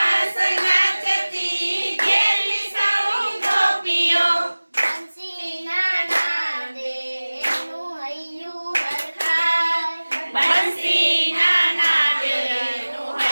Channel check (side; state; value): both; inverted; correlation -1.00